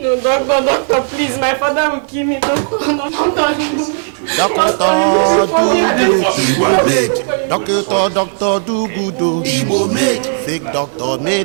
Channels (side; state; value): left; silent; digital silence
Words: doctor, please, my father will kill me. Doctor do good, Igbo made. Fake doctor